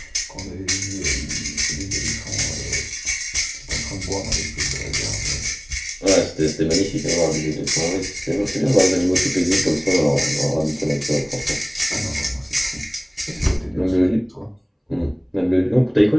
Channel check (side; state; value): both; identical; correlation 1.00